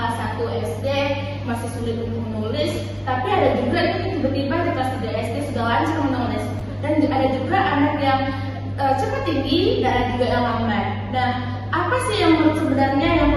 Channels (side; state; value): both; identical; correlation 1.00